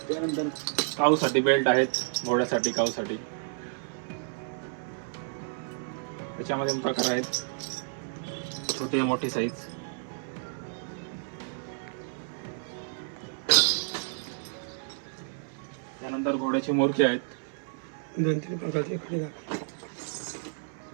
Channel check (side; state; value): left; silent; digital silence